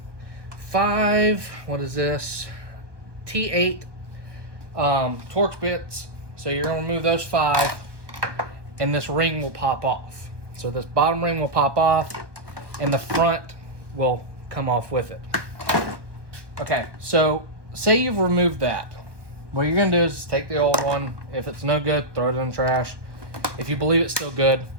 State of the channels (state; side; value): late; left; 1.1 ms